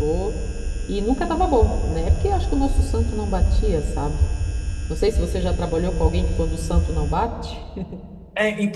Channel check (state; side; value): identical; both; correlation 1.00